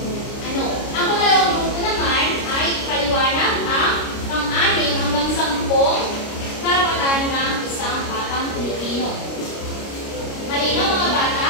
ano. Ang pangalawang grupo naman ay paliwanag ang pang-anim hanggang 10 karapatan ng isang batang Pilipino. Malinaw mga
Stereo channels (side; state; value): right; late; 29 ms